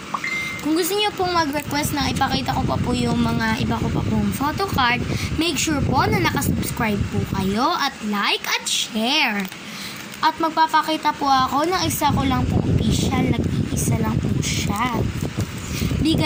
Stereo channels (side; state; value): both; identical; correlation 1.00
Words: Kung gusto niyo pong mag-request na ipakita ko pa po yung mga iba ko pa pong photo card, make sure po na nakasubscribe po kayo at like at share. At magpapakita po ako ng isa ko lang po official, nag-iisa lang po siya.